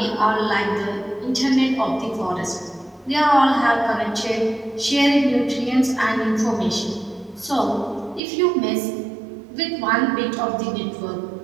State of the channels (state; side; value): drops out; left; at 8.2 s